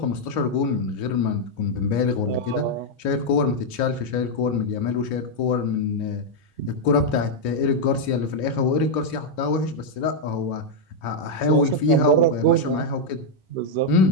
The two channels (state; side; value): late; right; 3.0 ms